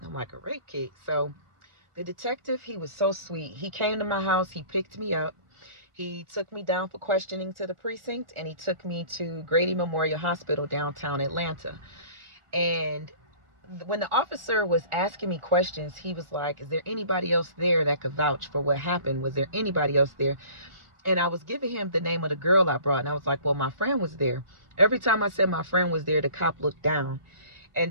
I'm like, a rape kit? So the detective, he was so sweet. He came to my house, he picked me up. He took me down for questioning to the precinct, and he took me to Grady Memorial Hospital downtown Atlanta. And when the officer was asking me questions, he was like, is there anybody else there that could vouch for what happened? Was there anybody else there? And I was giving him the name of the girl I brought, and I was like, well, my friend was there. Every time I said my friend was there, the cop looked down. And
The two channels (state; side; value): late; left; 1.4 ms